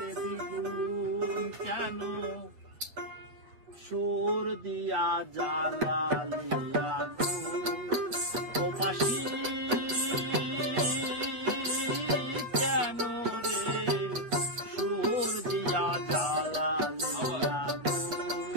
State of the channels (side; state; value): left; late; 8.3 ms